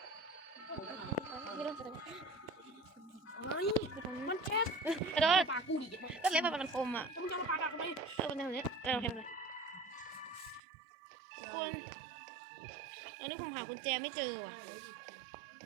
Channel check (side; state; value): left; drops out; at 10.6 s